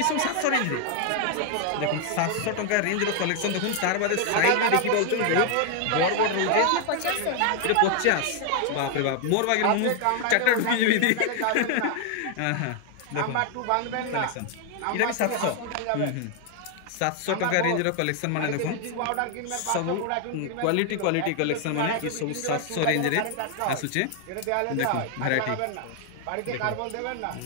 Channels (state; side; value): different; both; correlation 0.00